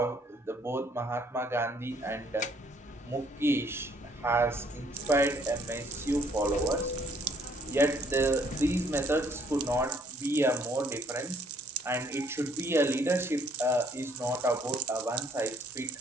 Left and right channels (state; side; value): normal; both; correlation 0.65